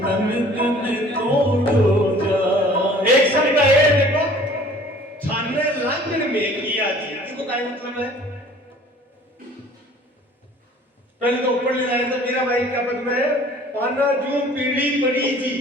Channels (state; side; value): normal; both; correlation 0.50